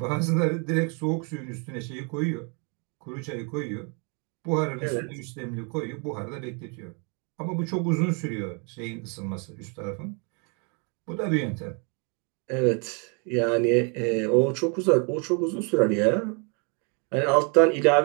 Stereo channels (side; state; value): left; quieter; 36.4 dB